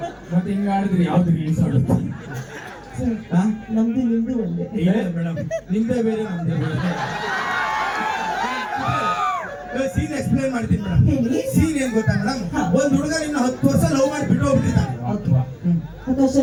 ಮತ್ತೆ ಹಿಂಗ ಆಡಿದ್ರಿ ಯಾವ್ದು ರಿಲೀಸ್ ಆಗುತ್ತೆ? ನಮ್ದು ನಿಮ್ದು ಒಂದೇ. ಇಲ್ಲ ಮೇಡಮ್, ನಿಮ್ದೇ ಬೇರೆ ನಮ್ದೇ ಬೇರೆ. ಸೀನ್ ಎಕ್ಸ್ಪ್ಲೇನ್ ಮಾಡ್ತೀನಿ ಮೇಡಮ್. ಸೀನ್ ಏನ್ ಗೊತ್ತಾ ಮೇಡಮ್? ಒಂದ್ ಹುಡುಗ ಇನ್ನು 10 ವರ್ಷ ಲವ್ ಮಾಡಿ ಬಿಟ್ಟು ಹೋಗ್ಬಿಟ್ಟಿದ್ದಾನೆ.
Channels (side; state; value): both; identical; correlation 1.00